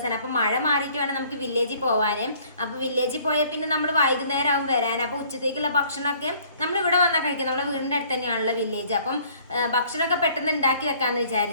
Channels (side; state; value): both; inverted; correlation -0.57